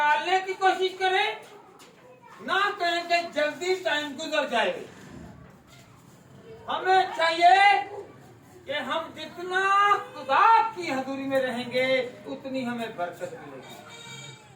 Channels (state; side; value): identical; both; correlation 1.00